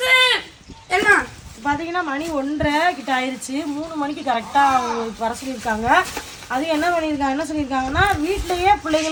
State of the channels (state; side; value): identical; both; correlation 1.00